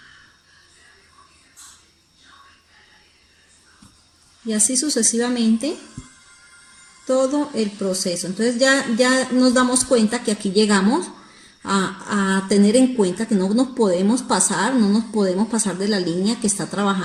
Y así sucesivamente todo el proceso. Entonces ya nos damos cuenta que aquí llegamos a tener en cuenta que no nos podemos pasar de la línea que está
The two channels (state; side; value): identical; both; correlation 1.00